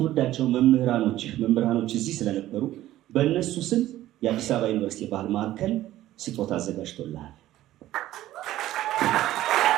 መምህራኖች እዚህ ስለነበሩ በእነሱ ስም የአዲስ አበባ ዩኒቨርሲቲ ባህል ማዕከል ስጦታ አዘጋጅቶልሃል።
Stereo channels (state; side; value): quieter; left; 14.4 dB